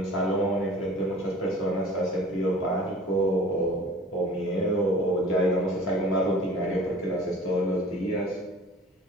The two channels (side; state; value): both; normal; correlation 0.45